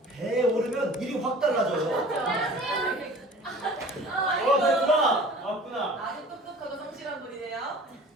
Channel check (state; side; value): normal; both; correlation 0.45